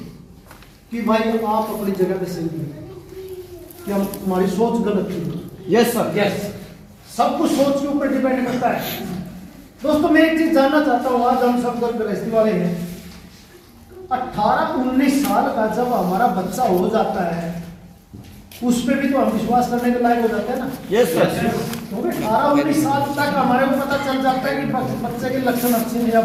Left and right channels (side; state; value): both; identical; correlation 1.00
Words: कि भाई आप अपनी जगह पे सही हैं, कि हम हमारी सोच गलत थी। Yes sir. यस सब कुछ सोच के ऊपर डिपेंड करता है। दोस्तों मैं एक चीज जानना चाहता हूँ, आज हम सब गृहस्थी वाले हैं, 18-19 साल का जब हमारा बच्चा हो जाता है उस पर भी तो हम विश्वास करने के लायक हो जाते हैं ना। Yes sir. क्योंकि 18-19 साल तक हमारे को पता चल जाता है कि बच्चे के लक्षण अच्छे हैं या